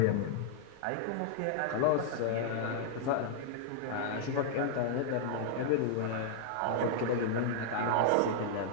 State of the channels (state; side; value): different; both; correlation -0.01